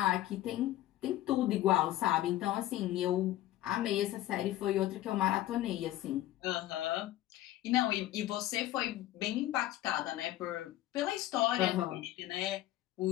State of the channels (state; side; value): quieter; right; 14.5 dB